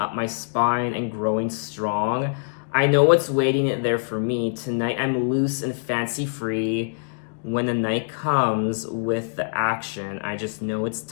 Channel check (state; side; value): silent; right; digital silence